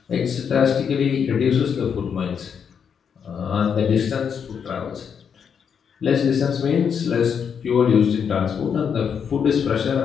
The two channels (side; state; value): right; quieter; 7.2 dB